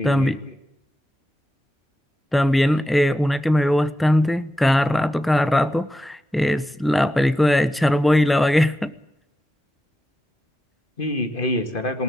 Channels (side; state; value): both; normal; correlation 0.89